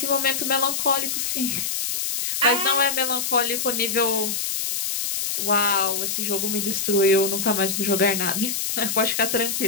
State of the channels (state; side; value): noise; left; hiss, 1 dB below the sound